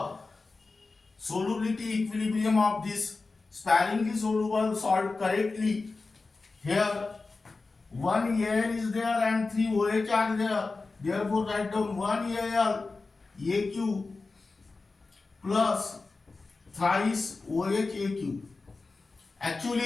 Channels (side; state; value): right; quieter; 3.8 dB